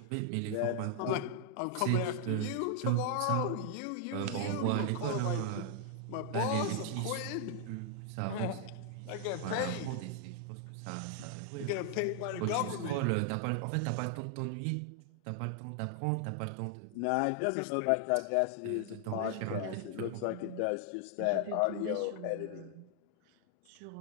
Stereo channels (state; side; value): different; both; correlation 0.00